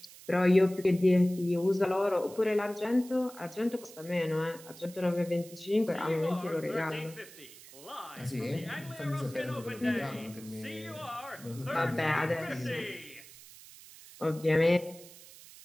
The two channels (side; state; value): right; noise; hiss, 19 dB below the sound